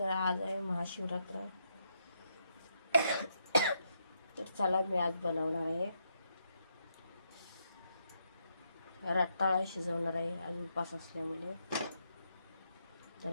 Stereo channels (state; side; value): inverted; both; correlation -0.79